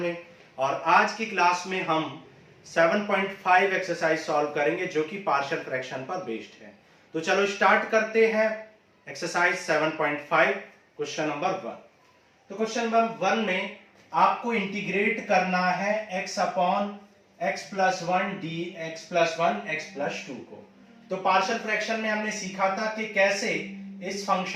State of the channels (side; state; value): both; identical; correlation 1.00